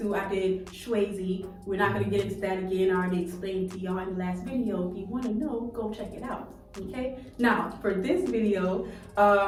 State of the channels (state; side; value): identical; both; correlation 1.00